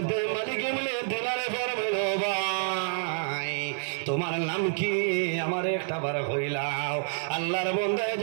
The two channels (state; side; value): silent; left; 57 dB below the other